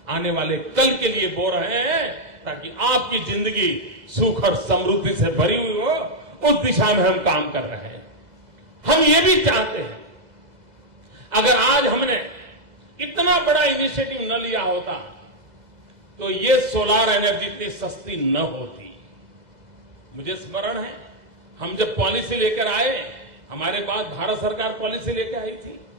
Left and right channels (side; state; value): left; late; 2.0 ms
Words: आने वाले कल के लिए बो रहे हैं, ताकि आपकी जिंदगी सुख और समृद्धि से भरी हुई हो, उस दिशा में हम काम कर रहे हैं। हम ये भी चाहते हैं, अगर आज हमने इतना बड़ा इनिशिएटिव न लिया होता तो ये सोलार एनर्जी इतनी सस्ती न होती। मुझे स्मरण है, हम जब पॉलिसी लेकर आए, हमारे बाद भारत सरकार पॉलिसी लेकर आई थी,